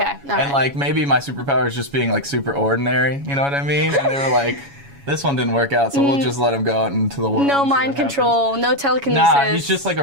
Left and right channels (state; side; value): late; left; 7.2 ms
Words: Okay, all and right. like maybe my superpower is just being like super ordinary, you know what I mean? And they were like, this one didn't work out, so we'll just let him go out into the world. No and see mind what happens. control, no telekinesis. Nah, he's just like